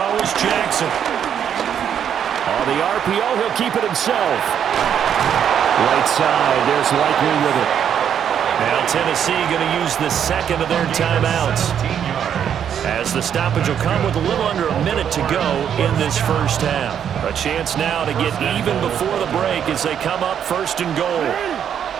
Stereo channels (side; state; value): left; quieter; 8.8 dB